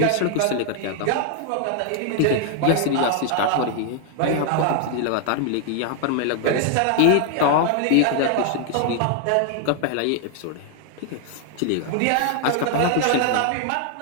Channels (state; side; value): different; both; correlation 0.00